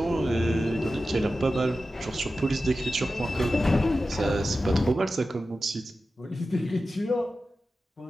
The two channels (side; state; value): both; normal; correlation 0.93